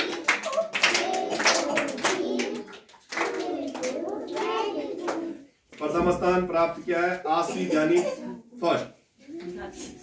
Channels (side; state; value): both; identical; correlation 1.00